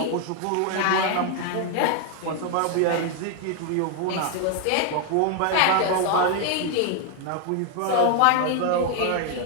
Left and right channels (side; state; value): both; different; correlation 0.01